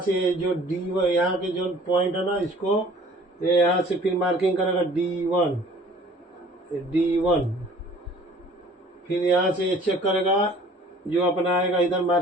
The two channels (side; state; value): both; normal; correlation 0.51